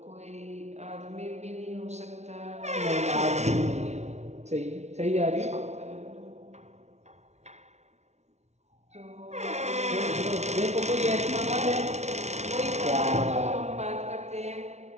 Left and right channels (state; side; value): late; left; 0.32 ms